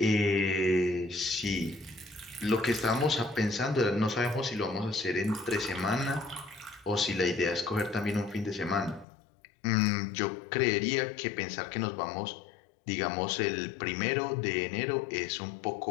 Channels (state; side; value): drops out; right; at 9.1 s